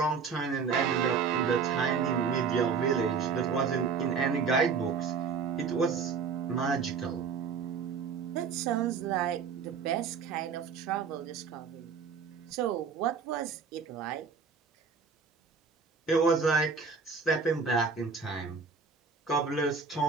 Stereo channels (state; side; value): quieter; left; 5.5 dB